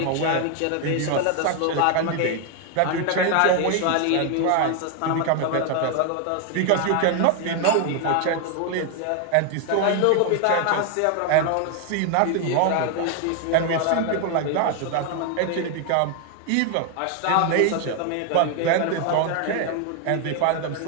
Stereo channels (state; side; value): different; both; correlation 0.01